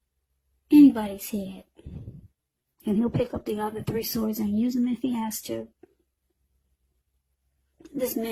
anybody's head. And he'll pick up the other 3 swords and use them if he has to. This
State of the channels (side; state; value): both; identical; correlation 1.00